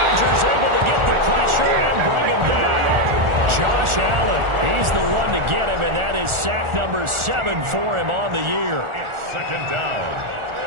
able to get the pressure and bring him down. Josh Allen, he's the one to get him, and that is sack number 7 for him on the year. It's 2nd down.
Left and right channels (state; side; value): late; left; 1.4 ms